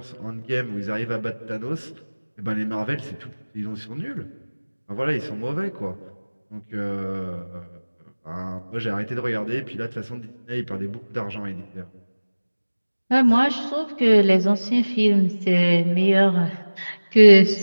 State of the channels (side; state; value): both; inverted; correlation -1.00